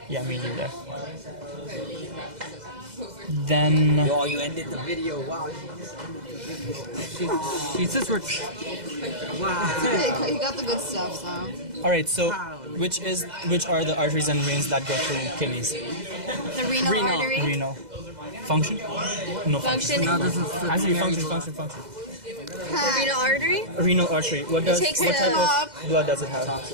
Yeah, me neither. Then Oh, you ended the video. Wow. She's just rich. He got the good stuff, so. all right, so which are the arteries and veins that go through kidneys? The renal, Renal. artery? Renal function? No function. Function. No, this is Actually, the function. The renal artery? Renal artery. What takes what the- type of blood does it have?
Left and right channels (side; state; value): left; late; 2.0 ms